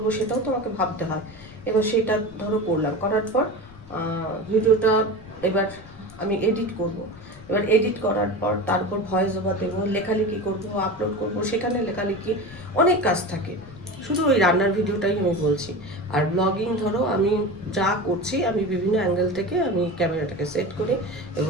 সেটাও তো আমাকে ভাবতে হয়। এবার সেটা ধরো করলাম, করার পর ভিডিওটা এবার আমি এডিট করব, এবার এডিট করার পর তারপর ভয়েস ওভার দেবো, লেখালেখি করব, আপলোড করব, সেখানে লেখালেখি অনেক কাজ থাকে। শুধু ওই রান্নার ভিডিওটাই আমি বলছি। আর ব্লগিং ধরো আমি যা করছি আমি বিভিন্ন অ্যাঙ্গেল থেকে আমি ক্যামেরাটাকে সেট করি,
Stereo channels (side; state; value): left; noise; rumble, 21 dB below the sound